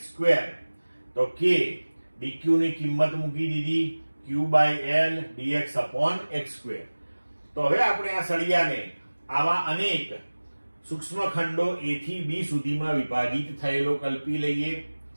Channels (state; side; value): inverted; both; correlation -1.00